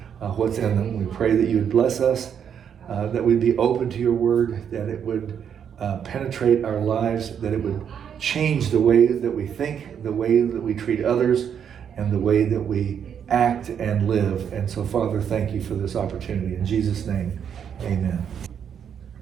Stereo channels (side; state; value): left; quieter; 8.1 dB